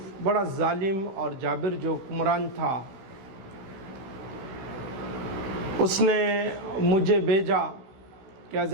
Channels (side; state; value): left; late; 16 ms